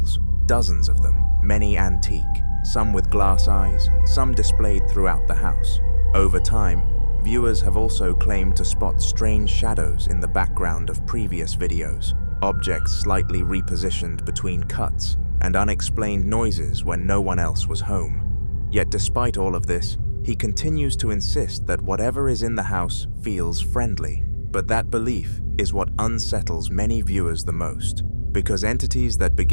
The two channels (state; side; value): inverted; both; correlation -1.00